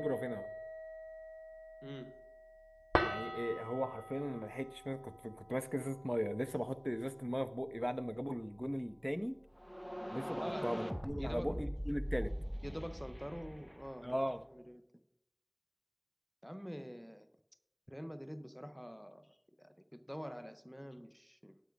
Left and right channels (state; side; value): identical; both; correlation 1.00